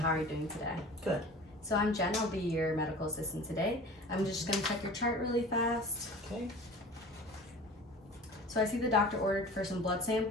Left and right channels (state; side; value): normal; both; correlation 0.41